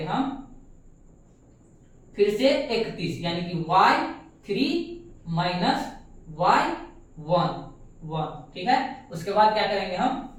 हम फिर से 31, यानी कि y3 माइनस y1, ठीक है। उसके बाद क्या करेंगे हम,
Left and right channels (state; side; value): identical; both; correlation 1.00